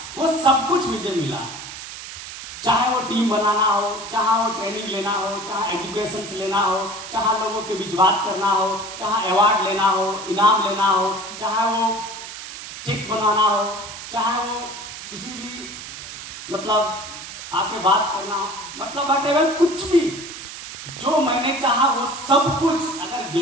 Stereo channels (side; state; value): right; noise; hiss, 11 dB below the sound